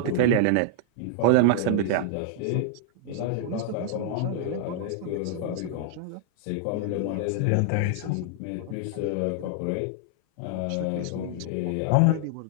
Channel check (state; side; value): different; both; correlation -0.01